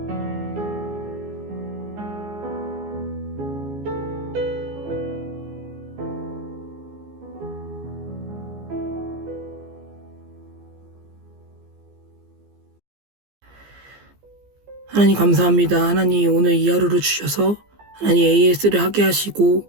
하나님 감사합니다. 하나님 오늘 이 하루를 주셔서 하나님 AS를 하게 하시고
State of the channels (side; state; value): left; late; 15 ms